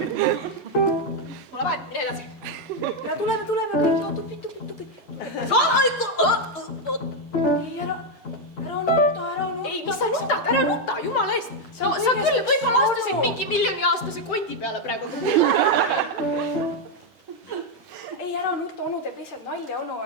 on vahet, mine edasi. Ja tuleme kõik, tupid. Ei, ära nuta. Ei, mis sa nutad, ära nuta, jumala eest. Sa küll võib-olla astusid mingi miljoniaastase koti peale praegu. Ei, ära nuta, onu teeb lihtsalt nalja, onu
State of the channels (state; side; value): normal; both; correlation 0.02